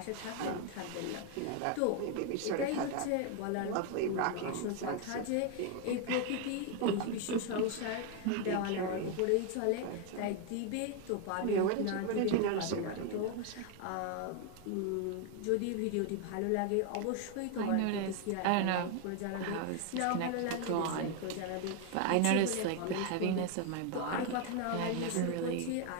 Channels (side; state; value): both; different; correlation 0.01